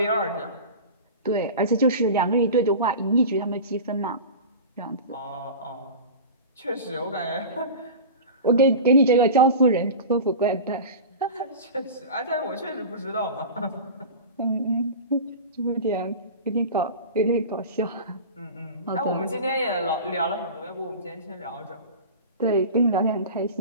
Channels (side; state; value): both; inverted; correlation -0.32